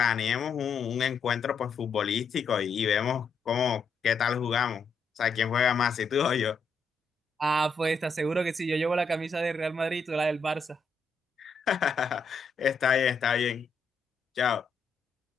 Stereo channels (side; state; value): right; quieter; 4.3 dB